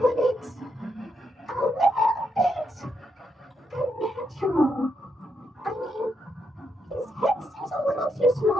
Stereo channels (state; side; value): normal; both; correlation 0.80